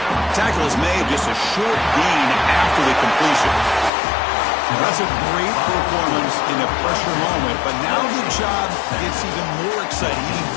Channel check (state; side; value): drops out; right; at 3.9 s